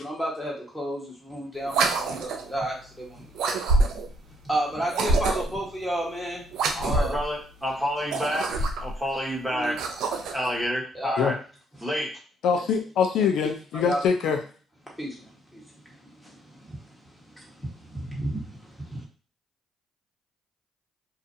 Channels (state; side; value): normal; both; correlation 0.68